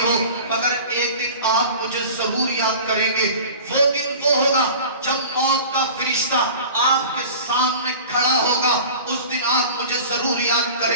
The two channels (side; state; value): both; inverted; correlation -0.39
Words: مگر ایک دن آپ مجھے ضرور یاد کریں گے۔ وہ دن وہ ہوگا جب موت کا فرشتہ آپ کے سامنے کھڑا ہوگا، اس دن آپ مجھے ضرور یاد